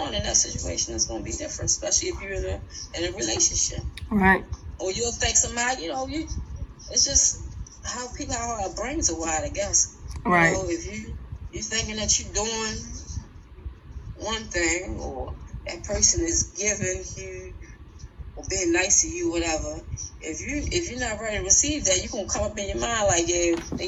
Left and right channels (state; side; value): identical; both; correlation 1.00